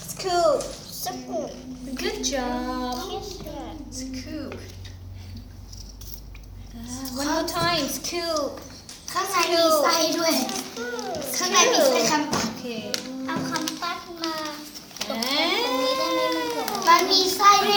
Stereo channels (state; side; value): identical; both; correlation 1.00